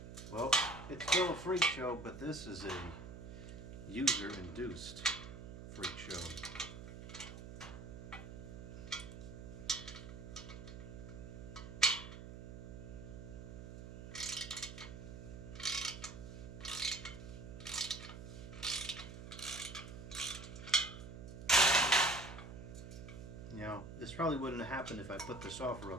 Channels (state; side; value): noise; right; hum, 11 dB below the sound